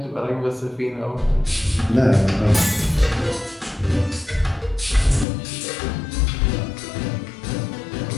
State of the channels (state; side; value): drops out; right; at 5.2 s